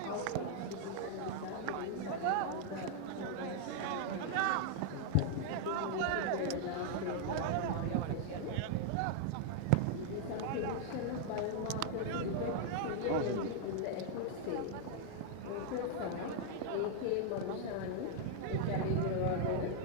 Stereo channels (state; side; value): different; both; correlation -0.01